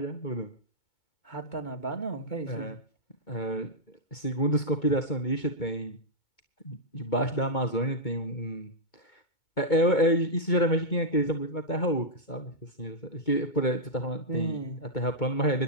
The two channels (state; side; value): late; right; 2.2 ms